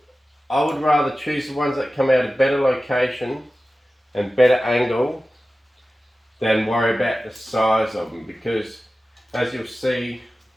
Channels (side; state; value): both; normal; correlation 0.95